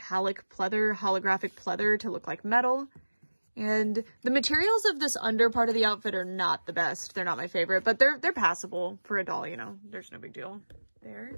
pleather, holographic pleather to look like metal. And the materials of this under part of the outfit are not the best. They're not my favorite, but they're passable for a doll, you know, there's no big deal there.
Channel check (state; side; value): inverted; both; correlation -1.00